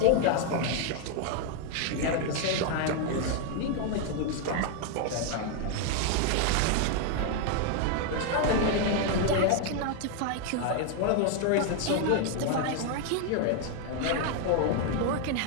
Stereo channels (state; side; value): different; both; correlation 0.01